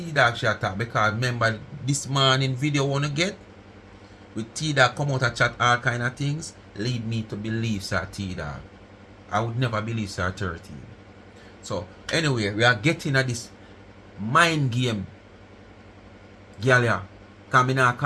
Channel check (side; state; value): both; identical; correlation 1.00